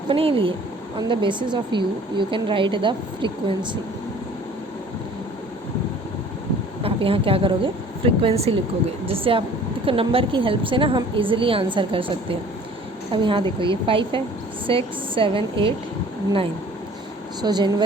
लिए on the basis of you can write the frequency। आप यहाँ क्या करोगे फ्रीक्वेंसी लिखोगे, जिससे आप देखो नंबर की हेल्प से ना हम इजीली आंसर कर सकते हैं। अब यहाँ देखो ये 5 है, 6 7 8 9। सो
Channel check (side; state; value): both; normal; correlation 0.50